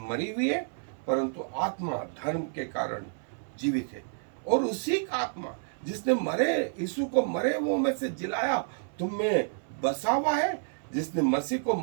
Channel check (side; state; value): left; silent; 58 dB below the other